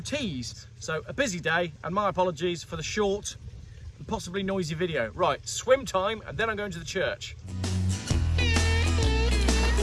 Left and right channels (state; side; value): identical; both; correlation 1.00